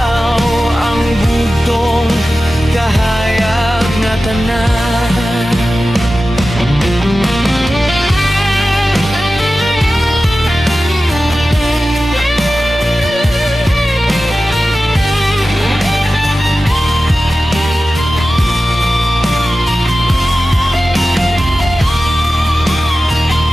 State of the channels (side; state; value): both; normal; correlation 0.94